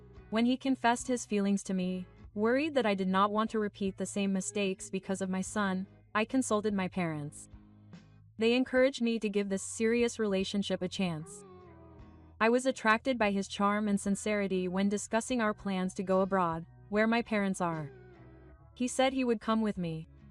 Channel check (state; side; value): identical; both; correlation 1.00